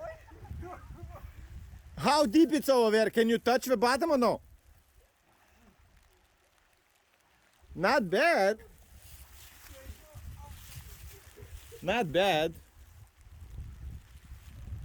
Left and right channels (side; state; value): both; identical; correlation 1.00